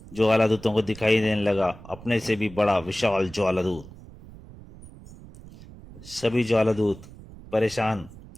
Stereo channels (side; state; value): right; noise; rumble, 18 dB below the sound